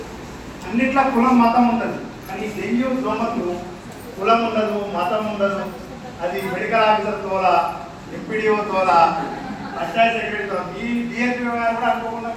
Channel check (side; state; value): both; identical; correlation 1.00